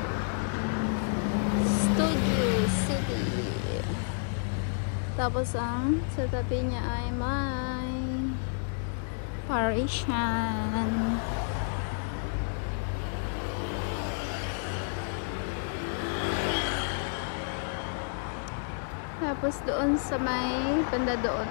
Tapos ang sa tabi niya ay may Parisian. Tapos doon sa may banda doon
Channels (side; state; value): right; silent; digital silence